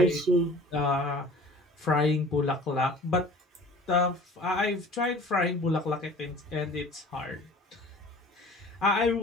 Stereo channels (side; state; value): both; normal; correlation 0.46